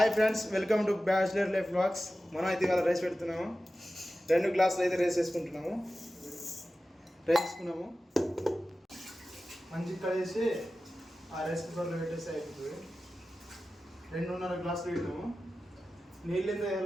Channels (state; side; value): normal; both; correlation 0.95